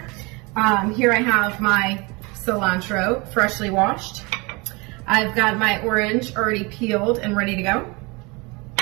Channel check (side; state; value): left; quieter; 26.9 dB